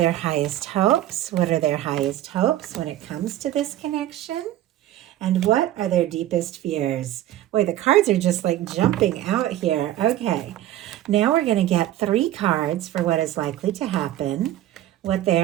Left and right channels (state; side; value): quieter; left; 13.4 dB